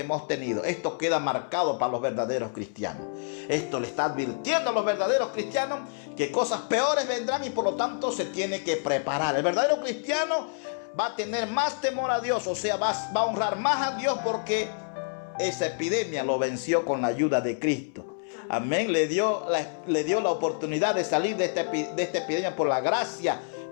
tenido. Esto queda marcado para los verdaderos cristianos. Esto le está advirtiendo a los verdaderos cristianos que cosas peores vendrán y por lo tanto se tiene que preparar. El verdadero cristiano va a tener más temor a Dios, o sea, va a honrar más a Dios porque esa epidemia lo venció con la ayuda de Cristo. Amén. Le dio la oportunidad de salir de esta epidemia por la gracia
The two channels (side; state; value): right; silent; 60 dB below the other